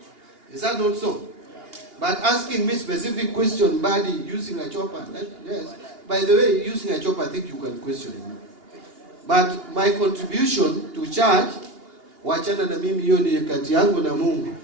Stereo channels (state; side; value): late; left; 2.8 ms